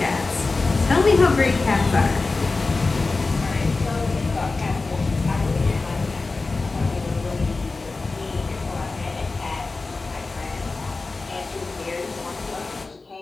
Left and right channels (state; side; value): quieter; right; 3.7 dB